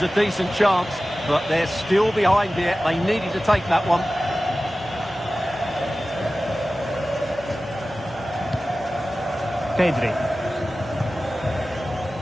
a decent chance, but they're still behind here. They needed to take that one. Pedri.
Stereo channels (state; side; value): normal; both; correlation 0.96